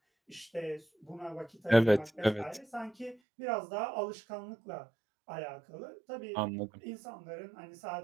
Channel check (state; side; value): drops out; left; at 3.2 s